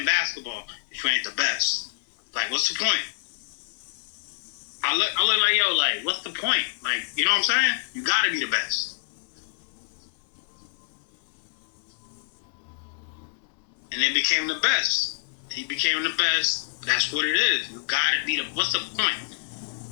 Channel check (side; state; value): right; silent; 60 dB below the other